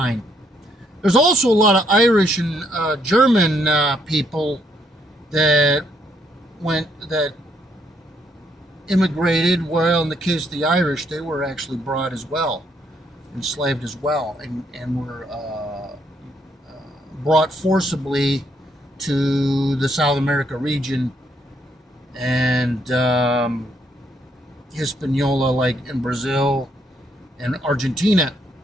There's also a lot of Irish and German people that immigrated. Well, in the case of the Irish, they were actually brought as well, enslaved as well, and were brought forcibly to the South America region and Hispaniola, like in Brazil and Argentina.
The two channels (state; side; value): normal; both; correlation 0.72